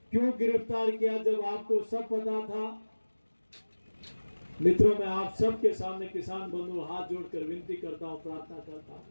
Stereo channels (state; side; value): inverted; both; correlation -1.00